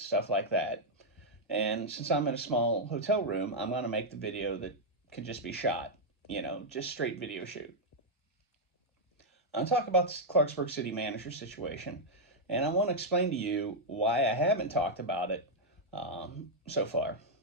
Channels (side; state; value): both; normal; correlation -0.03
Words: like that. And since I'm in a small hotel room, I'm going to make the video that can just be shot, just straight video shoot. I'll talk about the Clarksburg City Manager situation, and I want to explain to you why I haven't talked about it so far.